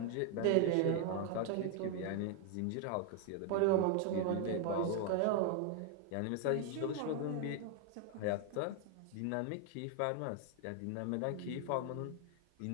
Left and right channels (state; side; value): different; both; correlation 0.01